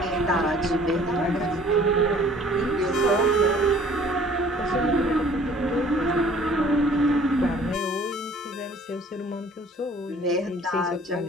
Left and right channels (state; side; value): normal; both; correlation 0.53